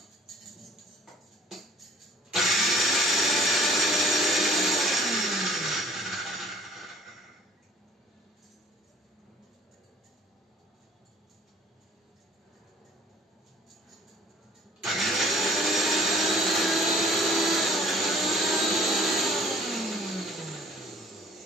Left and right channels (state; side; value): normal; both; correlation 0.53